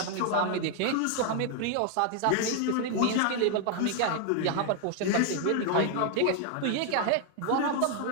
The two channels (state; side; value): different; both; correlation 0.00